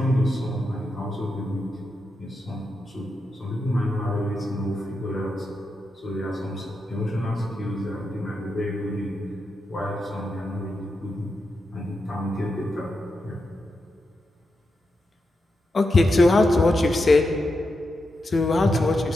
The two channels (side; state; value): both; normal; correlation 0.87